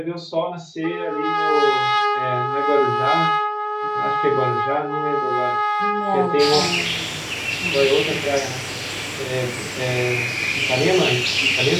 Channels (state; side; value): identical; both; correlation 1.00